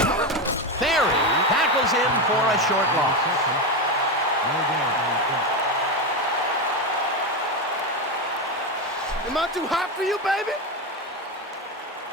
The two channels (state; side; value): normal; both; correlation 0.13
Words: Ferry tackles him for a short loss. Am I too hot for you, baby?